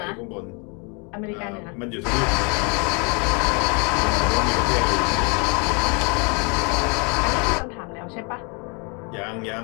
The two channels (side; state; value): right; quieter; 34.1 dB